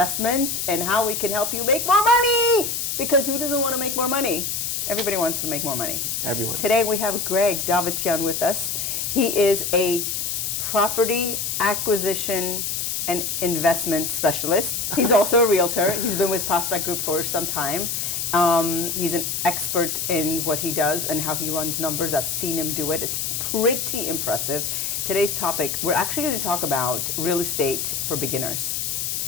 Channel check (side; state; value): left; noise; hiss, 2 dB below the sound